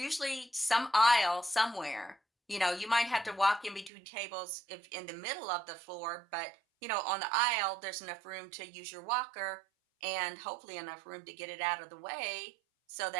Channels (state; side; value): drops out; left; at 3.9 s